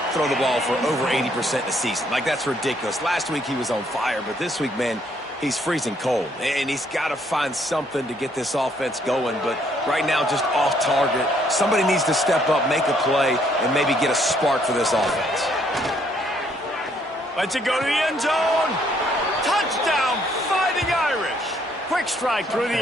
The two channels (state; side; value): normal; both; correlation 0.68